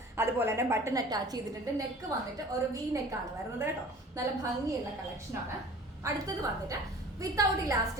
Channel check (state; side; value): normal; both; correlation 0.45